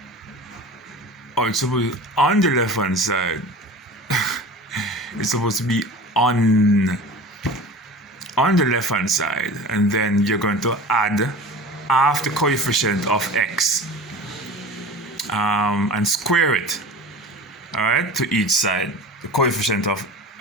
it's supposed to be on the left hand side. It's supposed to be on the left hand side, and then you're going to add half the coefficient of x and square it, all right, to each side, the coefficient of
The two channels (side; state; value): both; normal; correlation 0.36